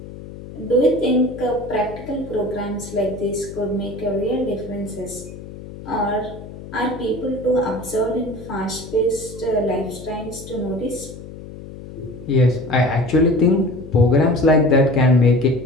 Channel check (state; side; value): noise; left; hum, 14 dB below the sound